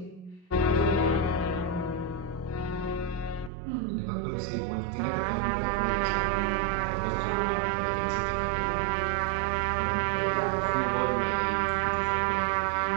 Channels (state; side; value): drops out; left; at 3.5 s